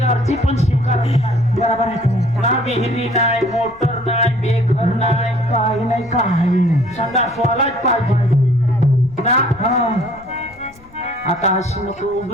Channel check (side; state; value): left; noise; rumble, 25 dB below the sound